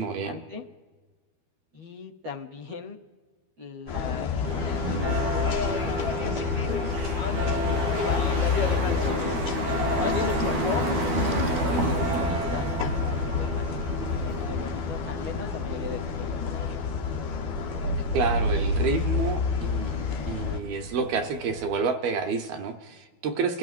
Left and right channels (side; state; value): left; late; 12 ms